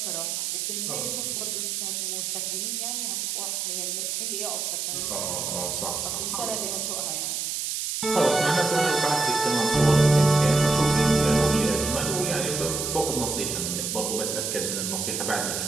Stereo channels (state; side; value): noise; right; hiss, 2 dB below the sound